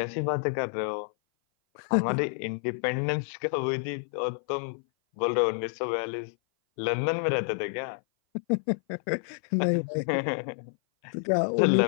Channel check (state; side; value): silent; right; 57 dB below the other